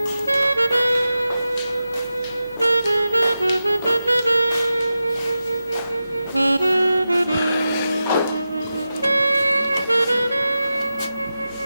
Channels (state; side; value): inverted; both; correlation -0.92